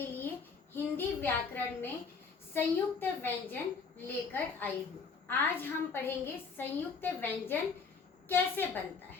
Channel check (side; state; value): right; quieter; 5.2 dB